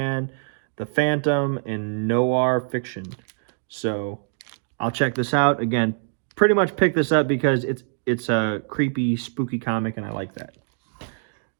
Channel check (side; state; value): left; silent; 62 dB below the other